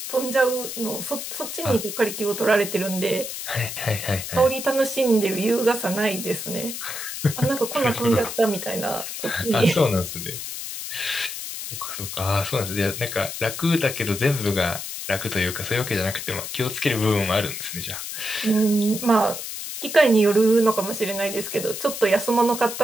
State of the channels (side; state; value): left; noise; hiss, 7 dB below the sound